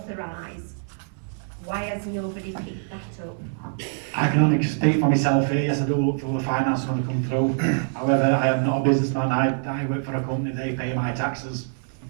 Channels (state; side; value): silent; left; 62 dB below the other